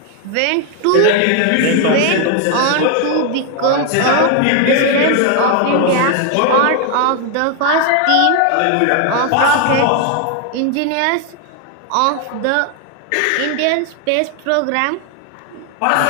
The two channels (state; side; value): different; both; correlation 0.01